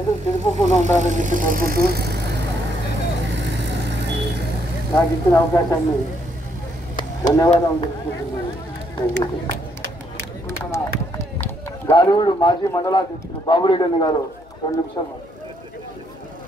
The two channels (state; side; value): normal; both; correlation 0.73